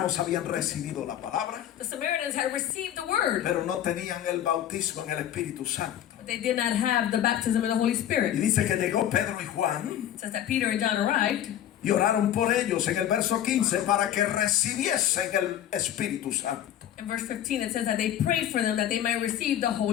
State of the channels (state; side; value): quieter; right; 11.1 dB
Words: habían recibido la palabra, The Samaritans had received the word, pero no tenían el bautismo en el Espíritu Santo. but they did not have the baptism in the Holy Y Spirit. dice que llegó Pedro y Juan It says that Peter and John arrived, y oraron por ellos en el verso 15 para que recibiesen el Espíritu Santo. in verse 15 it says that they prayed for them that they might receive the